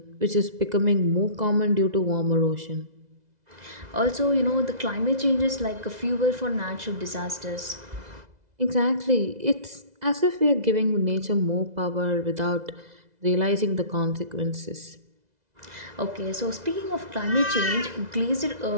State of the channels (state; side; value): late; left; 2.0 ms